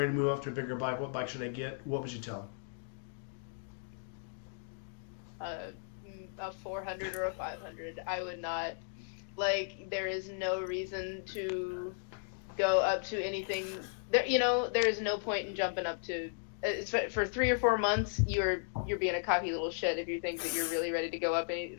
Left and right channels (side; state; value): right; silent; digital silence